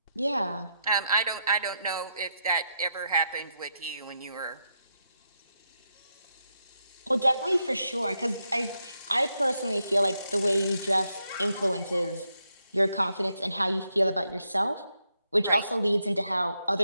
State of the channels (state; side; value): inverted; both; correlation -0.82